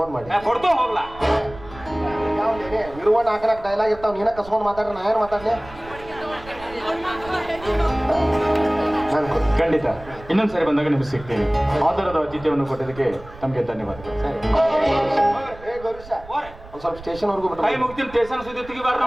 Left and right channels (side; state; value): right; noise; rumble, 18 dB below the sound